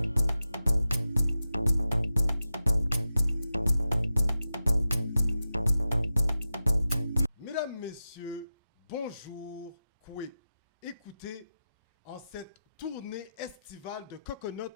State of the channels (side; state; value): both; inverted; correlation -0.92